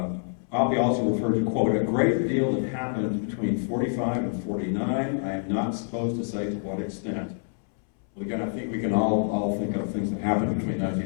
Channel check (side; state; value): right; silent; 60 dB below the other